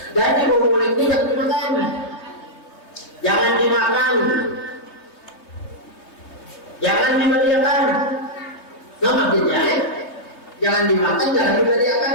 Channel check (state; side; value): late; right; 3.1 ms